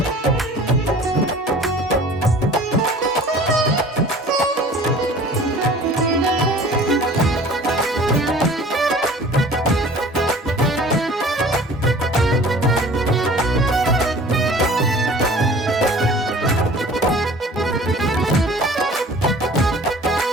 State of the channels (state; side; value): normal; both; correlation 0.46